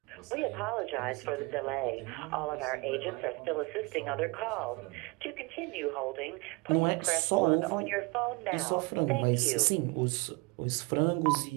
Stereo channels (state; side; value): quieter; left; 26.5 dB